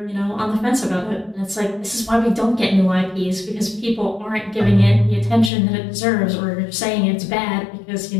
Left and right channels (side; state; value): right; drops out; at 5.5 s